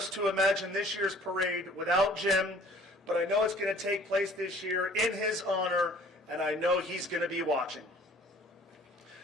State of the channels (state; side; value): normal; both; correlation 0.52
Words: to imagine this year's parade without Jim, but I know it's going to take place this year in his honor, and I know he's going to be watching.